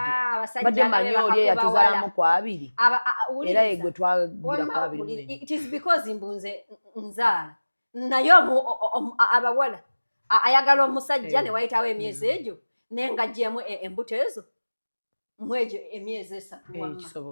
Abasajja badde manyi oli eyatuzaalamu ku 2. Era ye gwe twagira ku 2. It is because mbunze nzaala. Naye abawala ayagala omusajja ne wayitawo emyezi egyo n'engaggyemu embuto ezo mwejo emyezi 3 wamma.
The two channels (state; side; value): inverted; both; correlation -1.00